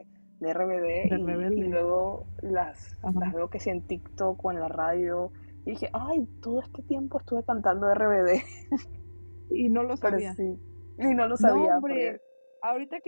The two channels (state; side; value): inverted; both; correlation -1.00